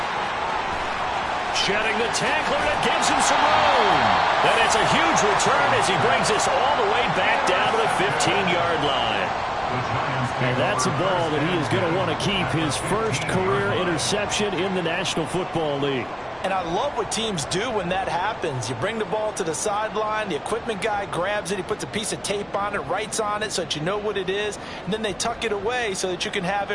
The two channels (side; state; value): both; identical; correlation 1.00